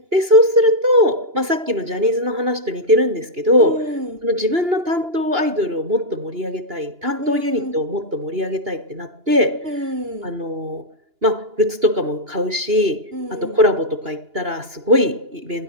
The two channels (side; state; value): left; late; 2.9 ms